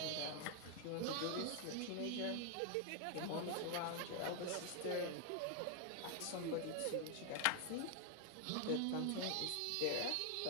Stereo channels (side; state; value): both; different; correlation 0.00